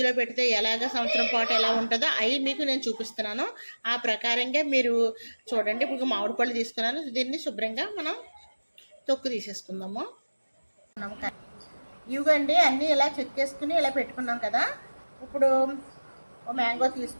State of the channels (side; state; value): both; inverted; correlation -1.00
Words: పెడితే ఎలాగ సంవత్సరం పాటు ఎలా ఉంటుందో అవి మీకు నేను చూపిస్తున్నాను. ఆ ప్రకారంగా మీరు చూడండి. ఇప్పుడు మామిడి పళ్ళు తీసుకున్నాను. దీన్ని శుభ్రంగా మనం తొక్కు తీసేసుకుందాము. ఇవ్వండి అన్నీ ఇలా చెక్కేసుకుని ఇలా పెట్టుకున్నాం కదా. ఇప్పుడు ఓ మ్యాంగో